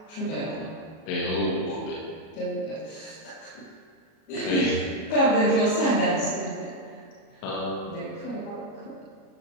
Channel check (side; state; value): right; late; 37 ms